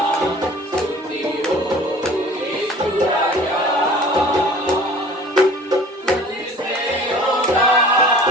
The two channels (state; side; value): normal; both; correlation 0.46